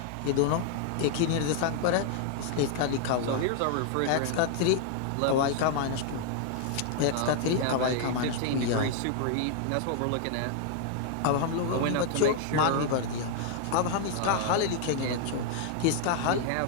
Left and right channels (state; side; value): different; both; correlation 0.00